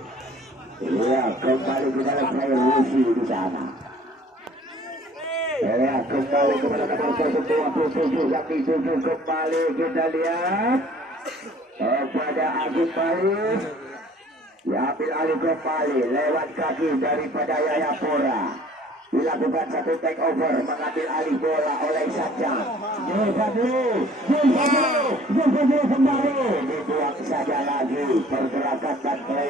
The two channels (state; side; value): normal; both; correlation 0.53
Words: Ya, kembali kita lihat saya Rusi di sana. Ya, kembali kepada nomor 27 yang dituju kembali kita lihat kepada Agus Baris. Diambil alih kembali lewat kaki daripada Yayapura. Dilakukan satu take over, mengambil alih bola oleh Isanjang. Jul kembali. Dibuang saja lagi. Pergerakan dan